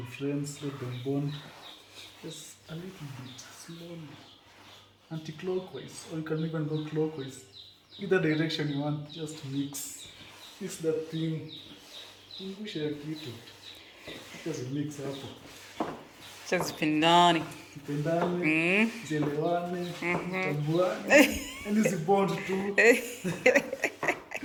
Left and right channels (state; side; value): identical; both; correlation 1.00